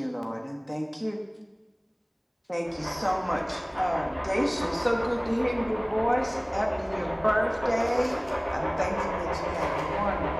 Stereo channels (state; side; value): identical; both; correlation 1.00